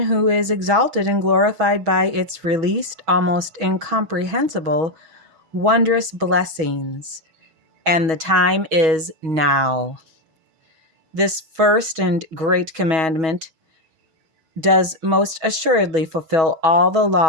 who is exalted and glorified by its released, almost incomprehensible, wondrous blessings. And the time is now. This first and great commandment does most assuredly fulfill all the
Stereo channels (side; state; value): left; late; 6.2 ms